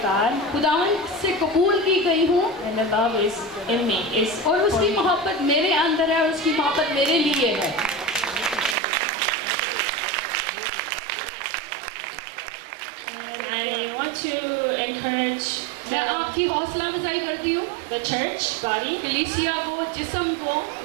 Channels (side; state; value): left; drops out; at 8.8 s